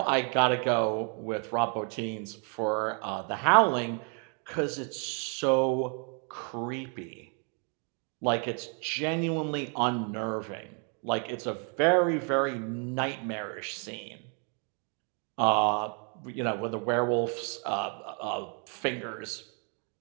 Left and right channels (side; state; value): left; quieter; 39.7 dB